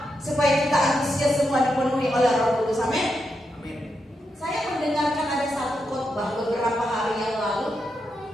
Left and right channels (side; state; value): both; normal; correlation 0.84